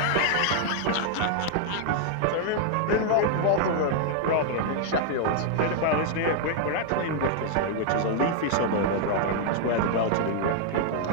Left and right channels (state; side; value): different; both; correlation 0.00